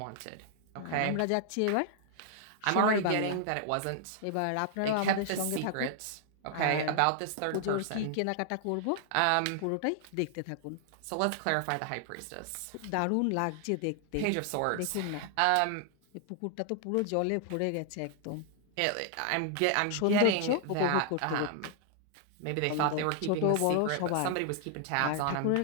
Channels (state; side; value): different; both; correlation 0.00